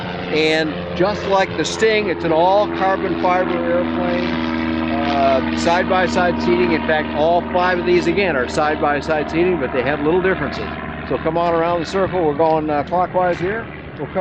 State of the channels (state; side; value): identical; both; correlation 1.00